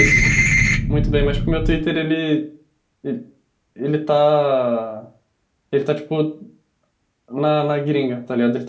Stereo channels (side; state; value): both; identical; correlation 1.00